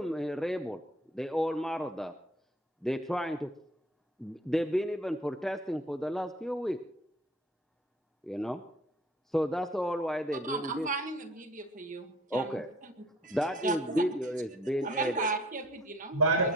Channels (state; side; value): normal; both; correlation 0.52